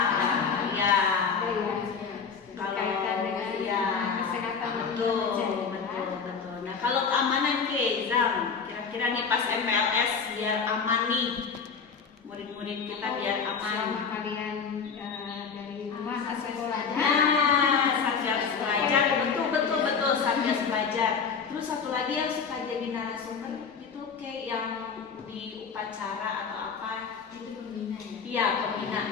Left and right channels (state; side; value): quieter; right; 5.9 dB